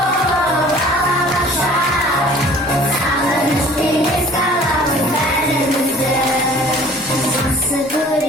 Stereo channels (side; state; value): both; normal; correlation 0.50